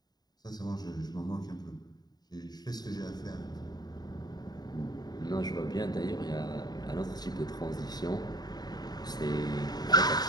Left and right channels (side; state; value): right; late; 0.19 ms